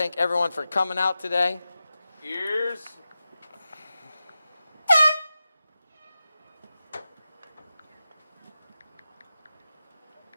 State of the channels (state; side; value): inverted; both; correlation -0.93